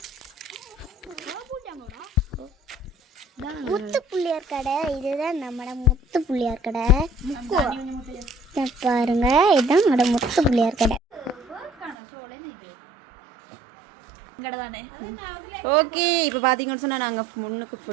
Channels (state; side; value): drops out; left; at 12.0 s